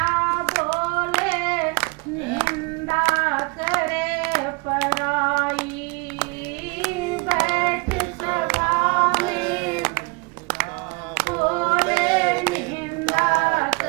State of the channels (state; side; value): quieter; left; 29.1 dB